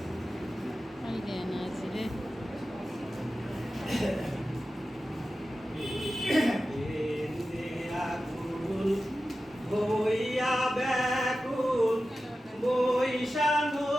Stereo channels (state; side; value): normal; both; correlation 0.93